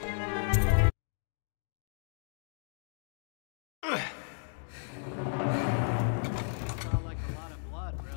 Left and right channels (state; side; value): silent; right; digital silence